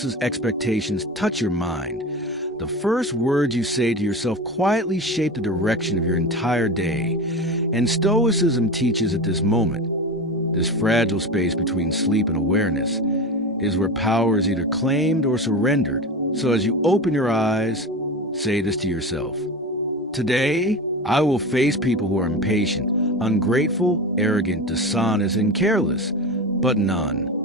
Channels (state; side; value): normal; both; correlation 0.26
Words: expectations touch your mind, the first words you say to yourself quietly shape the direction of your entire day. And Stoicism teaches at this moment, this fragile space between sleep and awareness, is where power is either claimed or surrendered. So as you open your eyes, say this to yourself. Today, I will face people who are impatient, ungrateful, arrogant, dishonest, and careless, but none